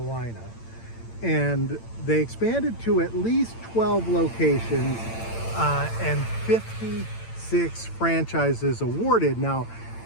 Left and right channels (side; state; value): right; late; 8.9 ms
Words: And they expanded to at least 12 locations and 56 franchises awarded. Now,